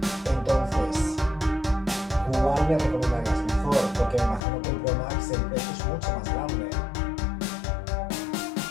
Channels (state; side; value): drops out; right; at 4.5 s